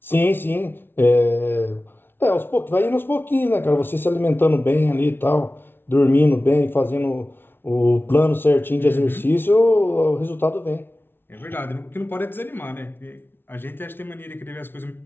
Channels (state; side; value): late; right; 0.11 ms